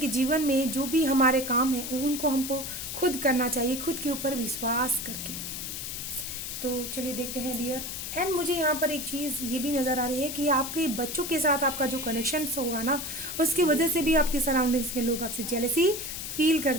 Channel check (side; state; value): left; noise; hiss, 6 dB below the sound